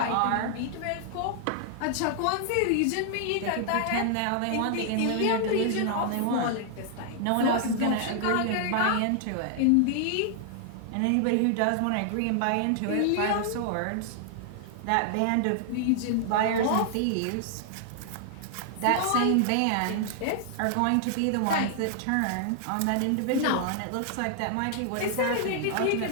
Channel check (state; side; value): different; both; correlation -0.01